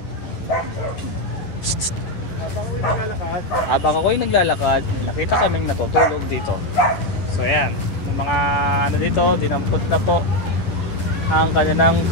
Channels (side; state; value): right; late; 10 ms